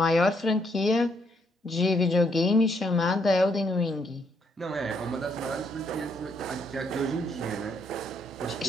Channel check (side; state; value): both; normal; correlation 0.73